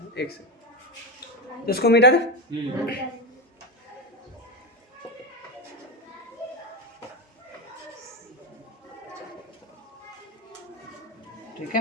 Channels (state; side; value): normal; both; correlation 0.15